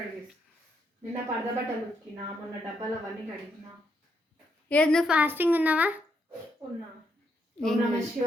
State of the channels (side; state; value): both; normal; correlation 0.78